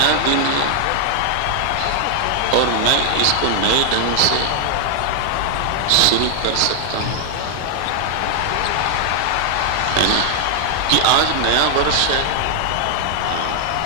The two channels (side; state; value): both; different; correlation 0.00